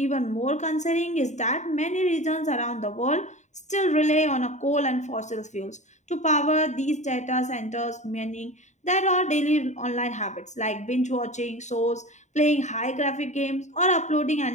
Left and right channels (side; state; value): right; late; 0.34 ms